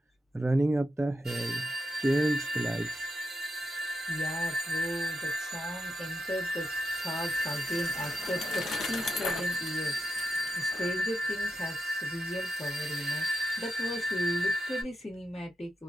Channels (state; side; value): normal; both; correlation 0.85